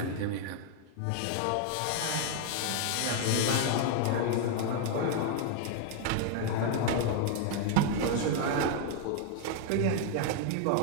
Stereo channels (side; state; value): both; different; correlation 0.00